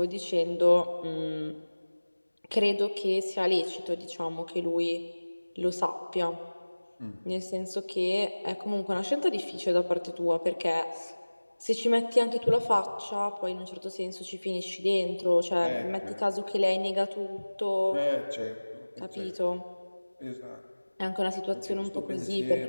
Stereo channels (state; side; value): inverted; both; correlation -1.00